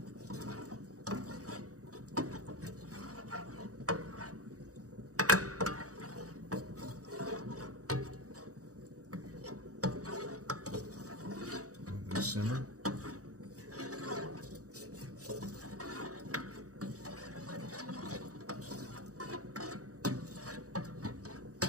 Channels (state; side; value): late; left; 0.66 ms